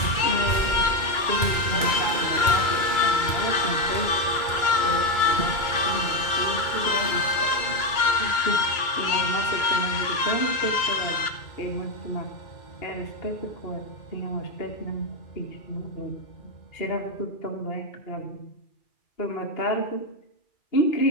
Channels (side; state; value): right; late; 2.3 ms